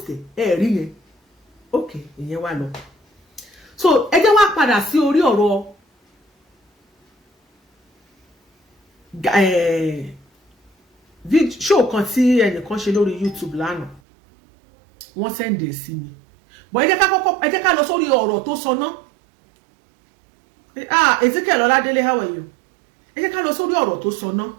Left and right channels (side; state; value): left; drops out; at 14.0 s